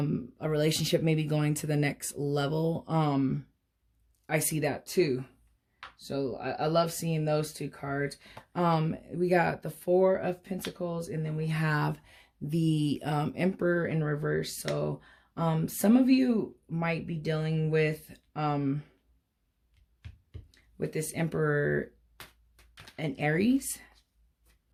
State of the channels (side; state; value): both; identical; correlation 1.00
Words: relationship maybe going to the next level. I see that too. So I love seeing those two cards. We got the Four of Pentacles, and then we have the Emperor in reverse. So some of you might be dealing with this Emperor and Aries.